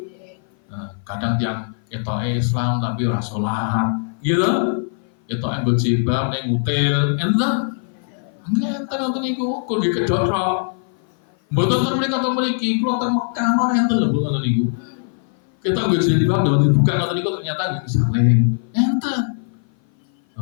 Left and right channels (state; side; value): silent; right; 57 dB below the other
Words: Nah, kadang tiang itu Islam tapi ora sholat, gitu. Itu yang berjilbab, yang ngutil, entah. Entah nonton iku, kau di kedorok. Betul mereka atau meriki, keluar Mekah mana yang terlalu nonton iku. Kita berjilbab dan dibuka nonton iku ternyata gak saling, entah.